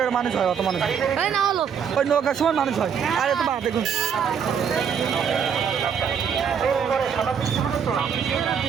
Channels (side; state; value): left; quieter; 7.3 dB